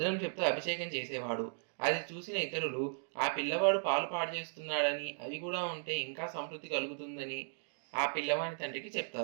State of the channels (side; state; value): left; silent; digital silence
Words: చెప్తూ అభిషేకం చేసేవాడు. అది చూసిన ఇతరులు ఆ పిల్లవాడు పాలు పాడు చేస్తున్నాడని, అవి కూడా ఉంటే ఇంకా సమృద్ధి కలుగుతుందని ఆ పిల్లవాని తండ్రికి